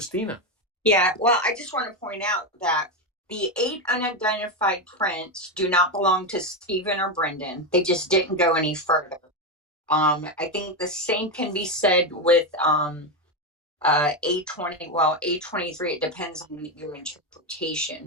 Yeah, well, I just want to point out that the 8 unidentified prints do not belong to Stephen or Brendan. They just didn't go any further. I think the same can be said with A20. Well, A23, it depends on your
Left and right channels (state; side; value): normal; both; correlation 0.10